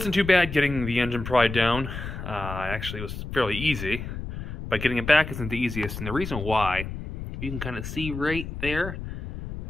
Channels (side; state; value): left; noise; rumble, 8 dB below the sound